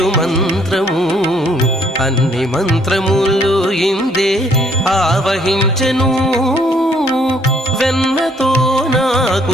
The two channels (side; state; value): both; normal; correlation 0.65